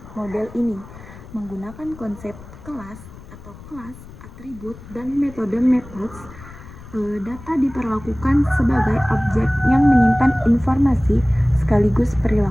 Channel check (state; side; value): noise; left; rumble, 17 dB below the sound